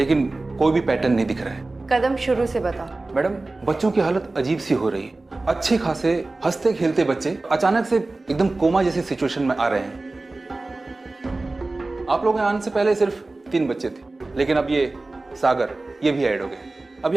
कोई भी पैटर्न नहीं दिख रहा है। कदम शुरू से बता। मैडम, बच्चों की हालत अजीब सी हो रही है। अच्छे खासे हंसते खेलते बच्चे अचानक से एकदम कोमा जैसी सिचुएशन में आ रहे हैं। आप लोगों के आने से पहले सिर्फ 3 बच्चे थे, लेकिन अब ये सागर ये भी ऐड हो गए। अभी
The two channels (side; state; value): left; quieter; 3.2 dB